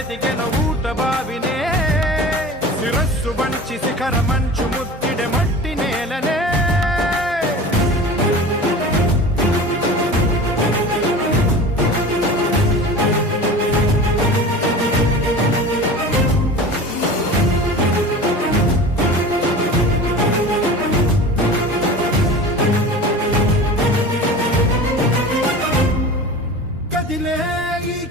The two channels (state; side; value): normal; both; correlation 0.36